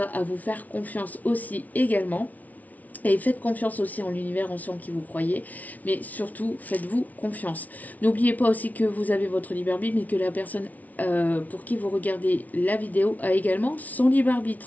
à vous faire confiance aussi également. Et faites confiance aussi en l'univers, en ceux en qui vous croyez, mais surtout faites-vous confiance. N'oubliez pas aussi que vous avez votre libre arbitre, mais que la personne pour qui vous regardez la vidéo a également son libre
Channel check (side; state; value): right; late; 0.074 ms